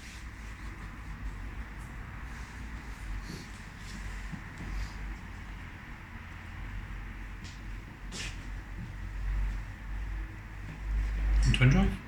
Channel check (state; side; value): identical; both; correlation 1.00